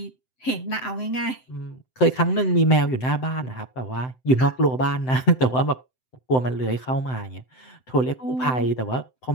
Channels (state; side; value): late; right; 7.8 ms